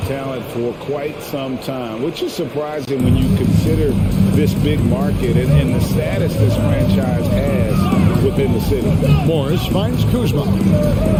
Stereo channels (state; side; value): identical; both; correlation 1.00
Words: talent for quite some time, which is surprising when you consider this big market and the status this franchise has within the city. Morris finds Kuzma.